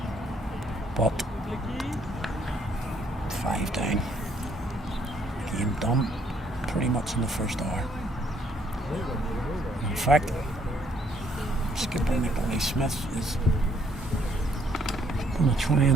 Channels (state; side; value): normal; both; correlation 0.67